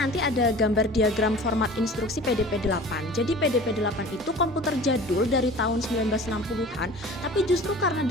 ada gambar diagram format instruksi PDP-8. Jadi PDP-8 itu komputer jadul dari tahun 1960-an, tapi justru karena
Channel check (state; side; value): normal; both; correlation 0.42